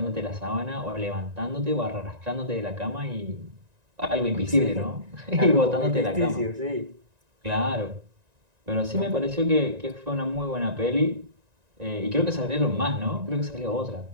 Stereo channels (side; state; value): left; late; 1.9 ms